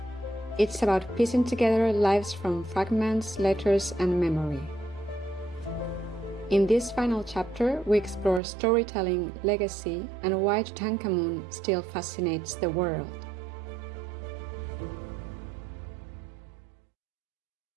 It's about piecing together lives from fragments, letters, and memory. In this final chapter, we explore storytelling, legacy, and why Tutankhamun still fascinates the world.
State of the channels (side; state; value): left; drops out; at 8.4 s